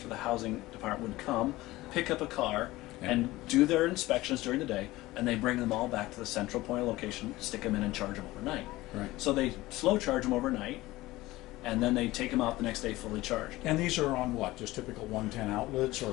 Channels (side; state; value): right; quieter; 18.4 dB